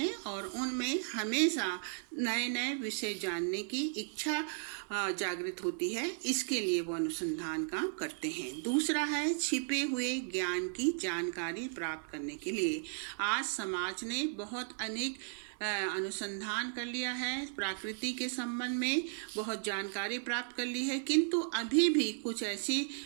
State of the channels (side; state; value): left; silent; digital silence